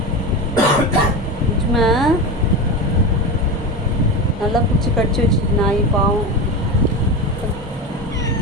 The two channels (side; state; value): both; normal; correlation 0.22